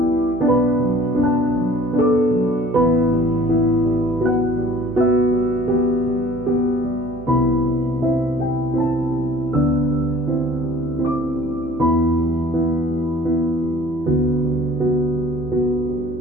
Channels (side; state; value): both; normal; correlation 0.50